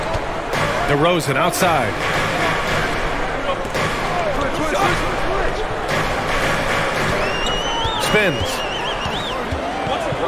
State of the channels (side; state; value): both; identical; correlation 1.00